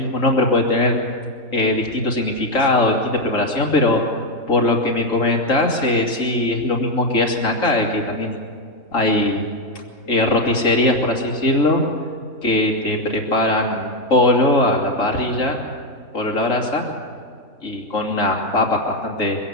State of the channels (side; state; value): right; late; 3.8 ms